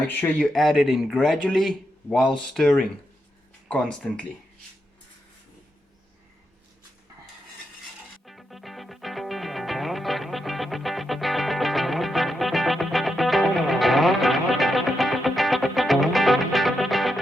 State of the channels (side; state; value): both; normal; correlation 0.84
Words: sure you add it in gradually while stirring constantly.